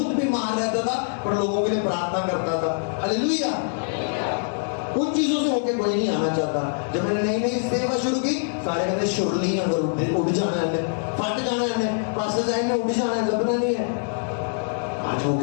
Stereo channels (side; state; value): right; silent; digital silence